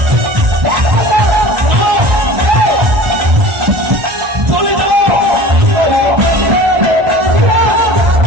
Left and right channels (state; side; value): late; left; 1.4 ms